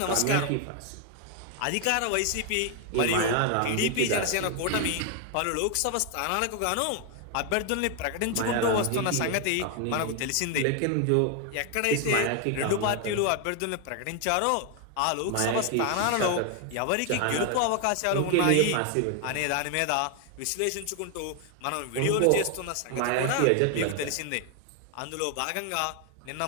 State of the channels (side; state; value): both; different; correlation 0.01